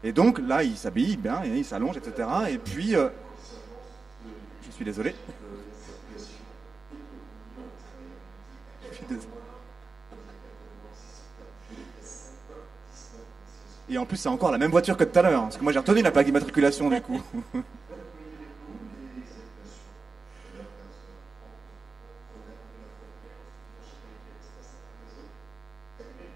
Et donc là, il s'habille bien, il s'allonge, etc. Et puis, je suis désolé. Et en plus, c'est encore la même voiture que tout à l'heure, parce que moi j'ai retenu la plaque d'immatriculation du coup.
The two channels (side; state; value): left; quieter; 4.2 dB